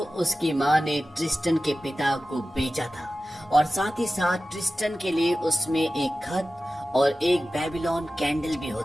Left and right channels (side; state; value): both; normal; correlation 0.95